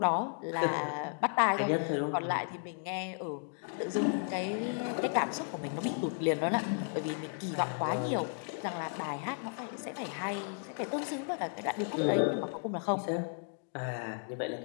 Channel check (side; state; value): right; silent; 55 dB below the other